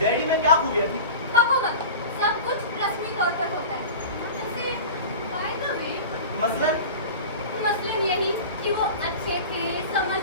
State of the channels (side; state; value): both; inverted; correlation -0.33